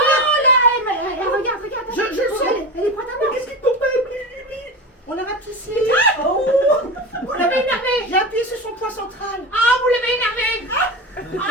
là, regarde. Je le sais. Elle est prête à mort. Qu'est-ce qui tombe? On l'a rapetissé. Oh! Vous l'avez énervé. J'ai appuyé sur son point central. Ah, vous l'avez énervé.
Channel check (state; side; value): normal; both; correlation 0.25